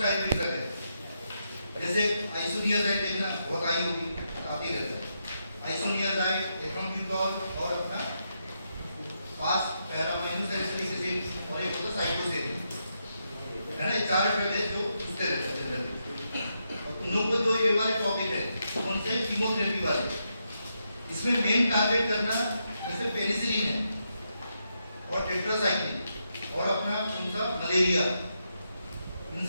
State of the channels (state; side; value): inverted; both; correlation -0.82